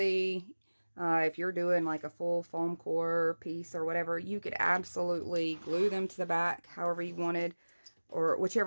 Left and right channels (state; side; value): inverted; both; correlation -1.00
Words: if you're doing like a full foam core piece or whatever, you could absolutely glue them to the back however you wanted, or